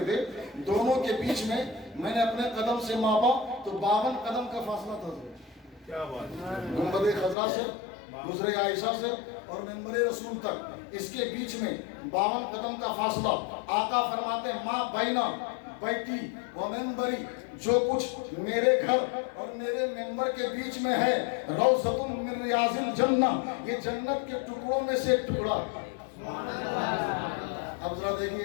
تھے، دونوں کے بیچ میں میں نے اپنے قدم سے ماپا تو 52 قدم کا فاصلہ تھا۔ کیا بات، گنبد خضرا سے حجرہ عائشہ سے اور منبر رسول تک اس کے بیچ میں 52 قدم کا فاصلہ۔ آقا فرماتے ہیں ما بینا بیتی و منبری، جو کچھ میرے گھر اور میرے منبر کے بیچ میں ہے روضۃ من ریاض الجنہ، یہ جنت کے ٹکڑوں میں سے ایک ٹکڑا۔ اب ذرا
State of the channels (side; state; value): right; drops out; at 7.4 s